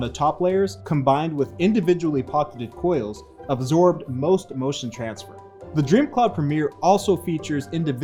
top layers combined with individually pocketed coils absorbed most motion transfer. The DreamCloud Premier also features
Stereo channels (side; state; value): both; identical; correlation 1.00